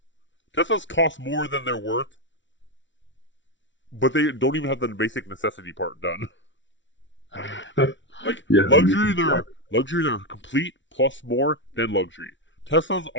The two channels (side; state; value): right; late; 0.55 ms